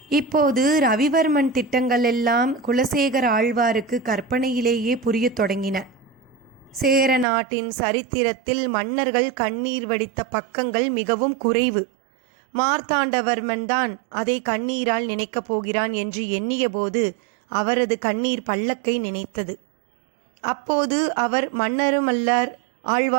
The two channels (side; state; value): left; drops out; at 7.2 s